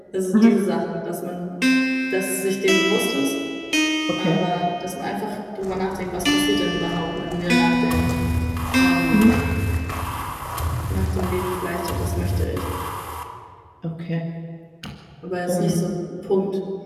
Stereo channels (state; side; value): identical; both; correlation 1.00